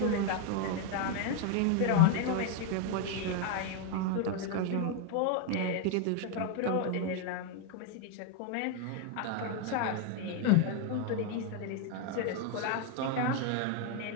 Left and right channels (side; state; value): both; different; correlation 0.01